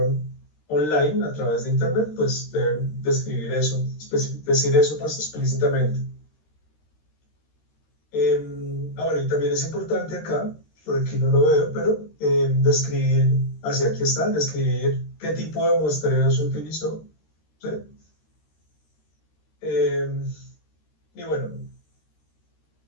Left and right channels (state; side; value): late; right; 13 ms